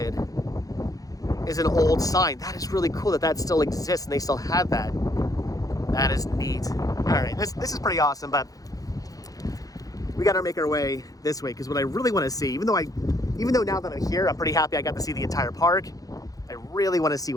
is an old sign. That is really cool that still exists and they still have that. That is neat. All right, this is pretty awesome, but we got to make our way this way because what I really want to see, even though now that I'm here, I'm pretty happy I got to see the entire park. I really want to see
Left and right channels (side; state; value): right; late; 0.17 ms